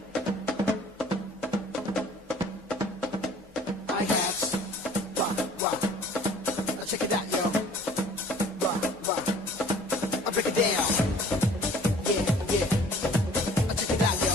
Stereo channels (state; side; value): normal; both; correlation 0.52